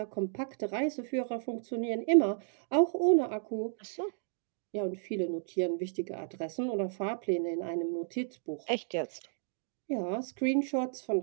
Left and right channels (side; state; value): left; silent; digital silence